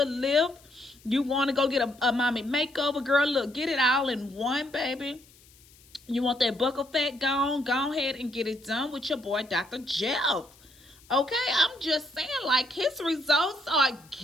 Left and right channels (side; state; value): left; noise; hiss, 27 dB below the sound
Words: lift. You want to go get a mommy makeover, girl, look, get it all in one, baby. You want that buckle fat gone? Go ahead and get it done with your boy, Dr. Jeff. Okay, I'm just saying, like, his results are